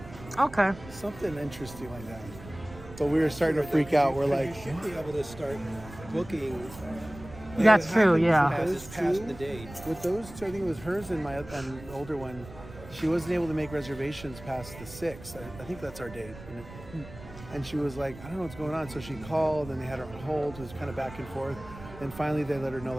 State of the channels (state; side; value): noise; right; rumble, 16 dB below the sound